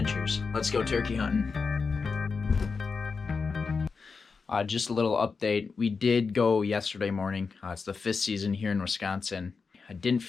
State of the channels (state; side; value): quieter; right; 4.9 dB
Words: Let's go turkey hunting. Just a little update. We did go yesterday morning. It's the 5th season here in Wisconsin. I didn't